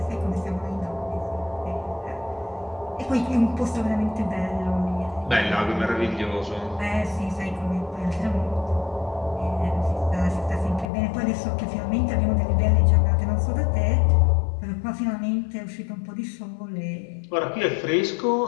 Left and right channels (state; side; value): drops out; right; at 10.9 s